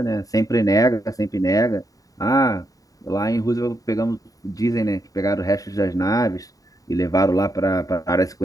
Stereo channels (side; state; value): right; late; 0.17 ms